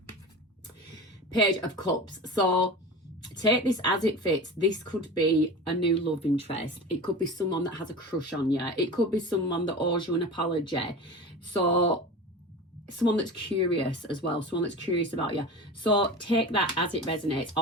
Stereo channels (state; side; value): normal; both; correlation 0.32